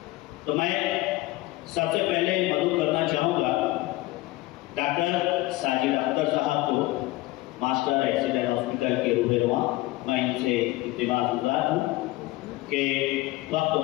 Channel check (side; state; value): right; quieter; 18.9 dB